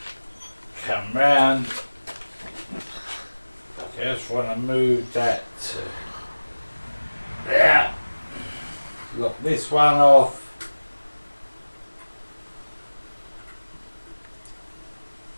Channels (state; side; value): inverted; both; correlation -1.00